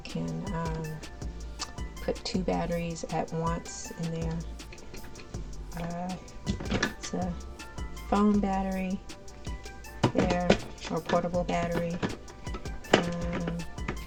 can put 2 batteries at once in there. It's a phone battery there, or portable battery. I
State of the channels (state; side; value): identical; both; correlation 1.00